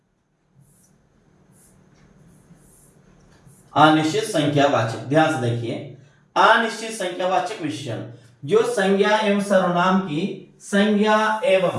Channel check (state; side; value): identical; both; correlation 1.00